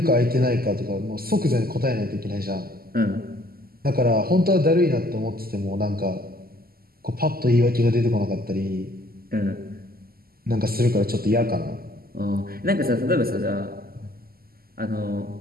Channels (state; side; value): late; left; 0.43 ms